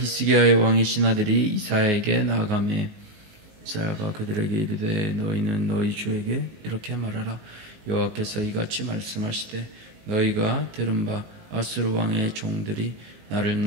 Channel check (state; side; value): late; left; 19 ms